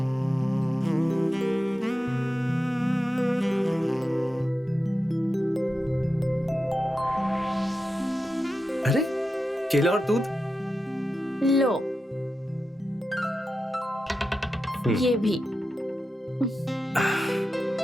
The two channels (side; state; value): both; normal; correlation 0.90